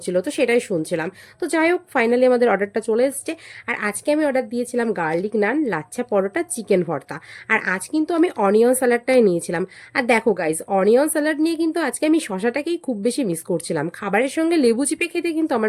তো সেটাই শুনছিলাম। তো যাই হোক, ফাইনালি আমাদের অর্ডারটা চলে এসছে। আর আজকে আমি অর্ডার দিয়েছিলাম গার্লিক নান, লাচ্ছা পরোটা, চিকেন ভর্তা। আর আজ কিন্তু আমি অনিয়ন স্যালাডটাই নিয়েছিলাম। আর দেখো গাইজ, অনিয়ন স্যালাড নিয়ে কিন্তু আজকে আমি শশাটাকেই খুব বেশি মিস করছিলাম। খাবারের সঙ্গে লেবু চিপে খেতে কিন্তু আমার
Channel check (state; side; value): identical; both; correlation 1.00